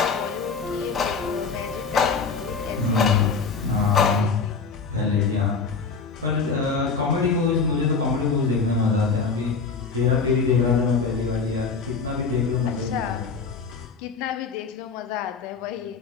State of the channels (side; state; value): right; quieter; 5.0 dB